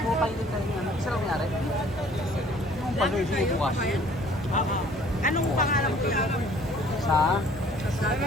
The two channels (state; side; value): normal; both; correlation 0.55